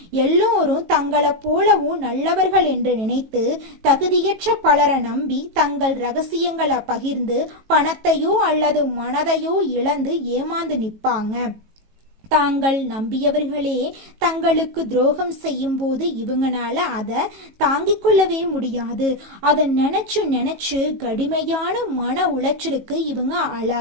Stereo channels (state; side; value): late; left; 18 ms